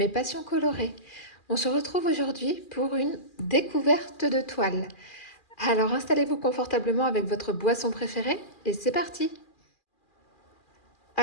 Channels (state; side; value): late; right; 2.4 ms